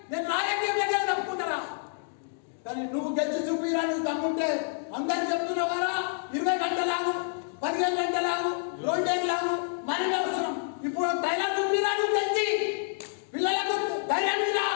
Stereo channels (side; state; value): right; silent; digital silence